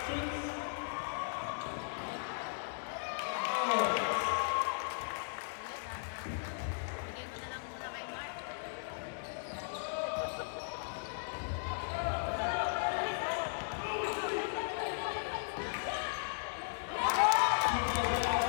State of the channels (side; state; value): right; silent; digital silence